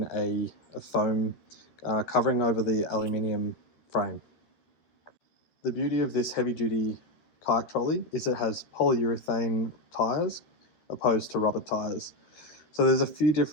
a foam covering over the aluminium frame. The beauty of this heavy duty kayak trolley is it has polyurethane tyres opposed to rubber tyres. So there's a few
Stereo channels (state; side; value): late; right; 13 ms